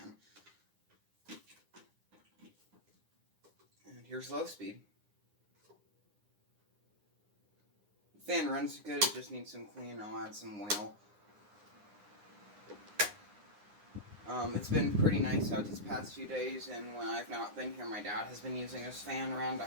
And here's low speed. The fan runs good, it just needs some cleaning. I'll add some oil. It's been pretty nice out these past few days, and when I've not been here, my dad has been using this fan around the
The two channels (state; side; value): late; left; 9.8 ms